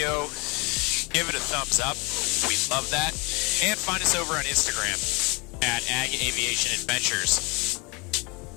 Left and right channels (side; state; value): right; quieter; 28.6 dB